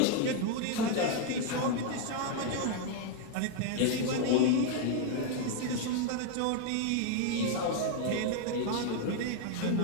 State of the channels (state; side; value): different; both; correlation 0.00